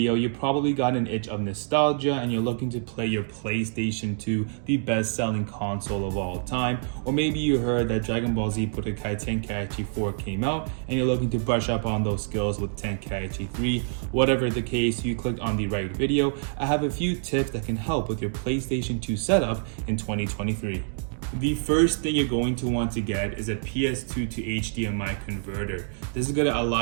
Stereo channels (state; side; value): silent; left; digital silence